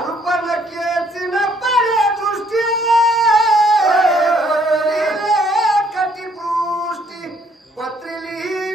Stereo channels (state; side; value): normal; both; correlation 0.65